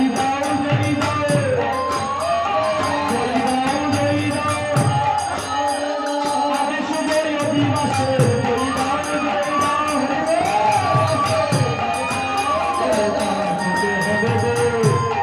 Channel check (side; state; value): both; identical; correlation 1.00